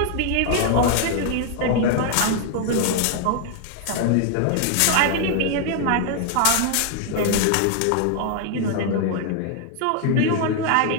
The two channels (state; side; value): different; both; correlation 0.00